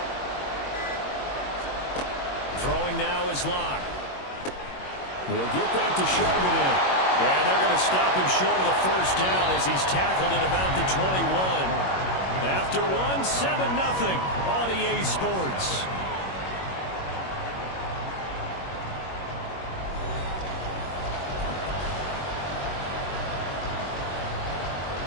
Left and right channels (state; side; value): late; right; 21 ms